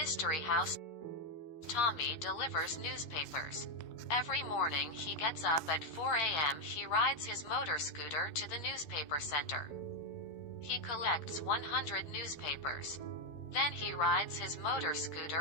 house. Tommy delivers newspapers. Every morning he gets up at 4 a.m. He rides his motor scooter to the newspaper center. He collects 100 newspapers. Then he rides his motor scooter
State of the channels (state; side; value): late; right; 13 ms